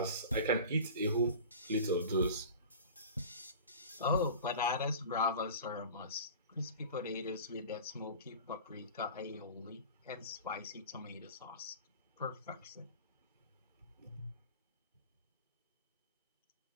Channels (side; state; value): both; inverted; correlation -0.36